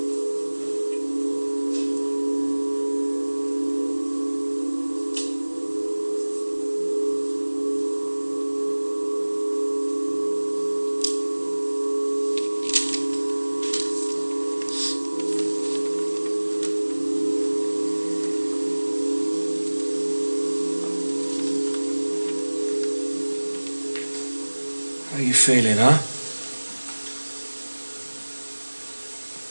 How are you feeling, huh?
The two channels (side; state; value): both; inverted; correlation -1.00